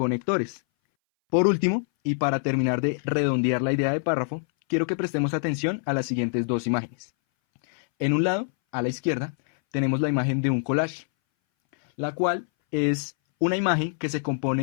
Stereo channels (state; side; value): silent; right; 60 dB below the other